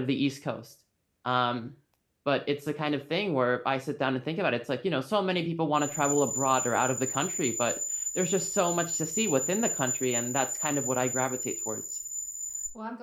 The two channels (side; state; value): both; identical; correlation 1.00